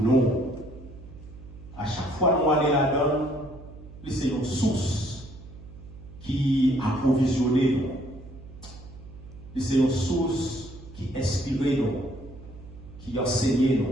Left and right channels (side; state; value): right; noise; hum, 17 dB below the sound